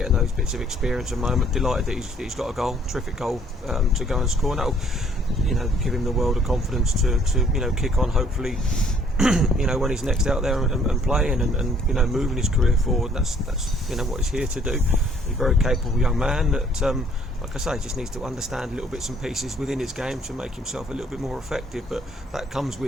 those bits of experience at the moment. Delighted that he's got a goal, terrific goal to go and score. And that'll give him the world of confidence to kick on, hopefully. When he's next out there and playing and moving his career forward. That's what he's here to do. He's a very capable young man that, like I say, just needs to understand little bits and pieces within his game to make himself a little bit more effective. But that comes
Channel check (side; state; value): both; normal; correlation 0.62